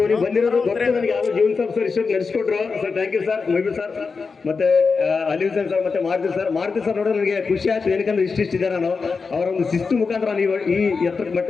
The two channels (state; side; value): quieter; right; 4.8 dB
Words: ನೀವು ಬಂದಿರೋದು ಗೊತ್ತೇ ನನಗೆ. ಯಾರು ಜೀವನ್ ಸರ್ ಇಷ್ಟೊಂದು ನಡೆಸ್ಕೊಟ್ರು ಸರ್, ಥ್ಯಾಂಕ್ ಯು ಸರ್. ಮೊಯ್ಬು ಸರ್ ಮತ್ತೆ ಅಲಿ ಹುಸೇನ್ ಸರ್ ಮತ್ತೆ ಮಾರುತಿ ಸರ್ ನೋಡೋ ನನಗೆ ಖುಷಿ ಆಯ್ತು. ಏನಕ್ಕಂದ್ರೆ ಇಷ್ಟಿದೆ ನಾನು ಅವರ ಒಂದು ಶಿಸ್ತು ಮುಖಾಂತರ ನೀವು ಈ ಎತ್ತರ